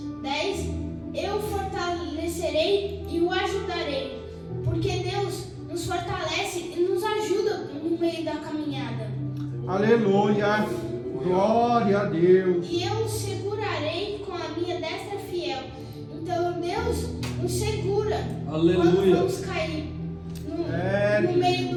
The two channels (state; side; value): identical; both; correlation 1.00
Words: 10: eu o fortalecerei e o ajudarei. Porque Deus nos fortalece e nos ajuda no meio da caminhada. Aleluia. Glória a Deus. E eu o segurarei com a minha destra fiel. Então Deus nos segura. Aleluia. Quando vamos cair no meio